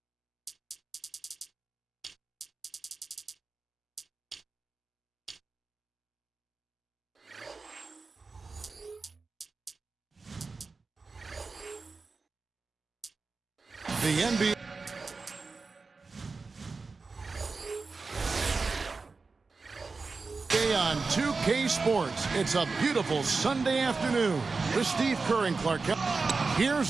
The NBA on 2K Sports. It's a beautiful Sunday afternoon with Steve Kerr and Clark Kent.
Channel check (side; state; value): left; quieter; 4.2 dB